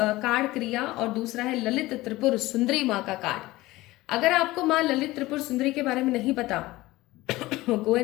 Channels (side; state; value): right; quieter; 18.7 dB